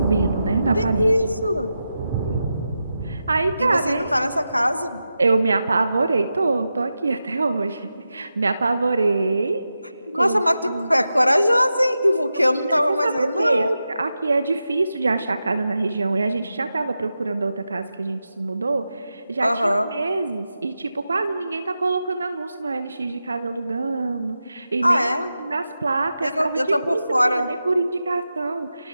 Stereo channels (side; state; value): both; inverted; correlation -0.90